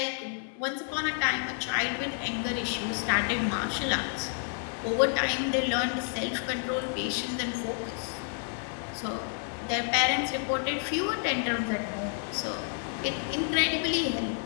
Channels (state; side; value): silent; right; 58 dB below the other